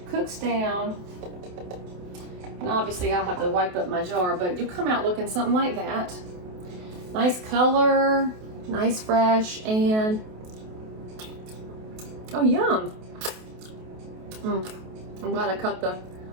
cooks down. And obviously I'll have to wipe up my jar, but you'll come out looking something like that. Nice color, nice fresh, and oh, yum. I'm glad I cut the,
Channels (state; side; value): late; left; 28 ms